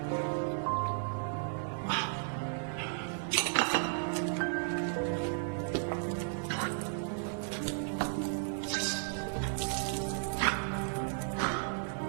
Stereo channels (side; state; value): left; silent; 55 dB below the other